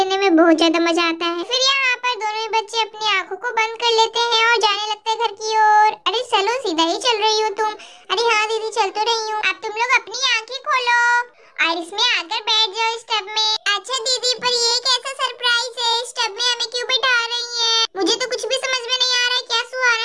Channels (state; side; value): identical; both; correlation 1.00